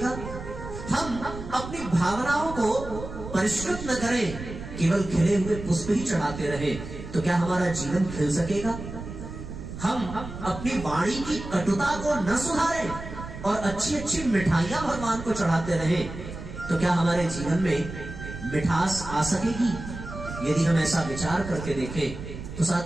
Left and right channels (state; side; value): noise; right; rumble, 10 dB below the sound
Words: हम अपनी भावनाओं को परिष्कृत न करें, केवल खिले हुए पुष्प ही चढ़ाते रहे, तो क्या हमारा जीवन खिल सकेगा? हम अपनी वाणी की कटुता को न सुधारें और अच्छी अच्छी मिठाइयां भगवान को चढ़ाते रहे, तो क्या हमारे जीवन में मिठास आ सकेगी? यदि हम ऐसा विचार करके देखें तो